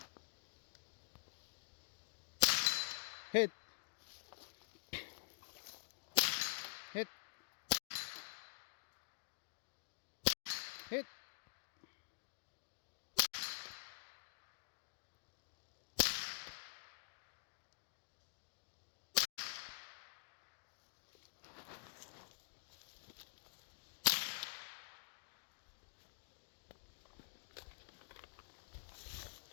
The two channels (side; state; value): right; silent; digital silence